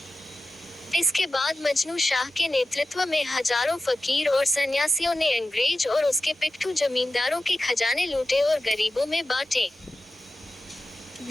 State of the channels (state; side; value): normal; both; correlation 0.93